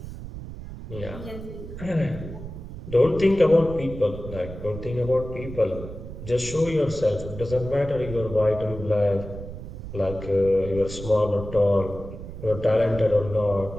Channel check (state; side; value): noise; right; rumble, 11 dB below the sound